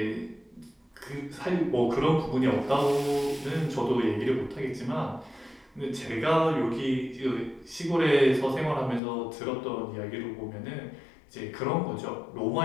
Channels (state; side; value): drops out; right; at 9.0 s